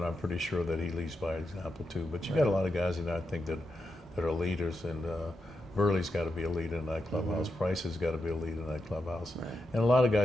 I'm pretty sure that he leads by example too. But you got a lot of guys in there I think that are leaders, and Burley's got to be a leader in that clubhouse. Price has got to be a leader in that clubhouse. And a lot of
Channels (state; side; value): normal; both; correlation 0.86